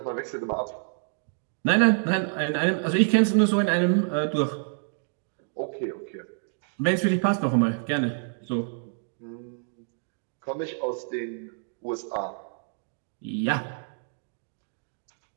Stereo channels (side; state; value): left; silent; digital silence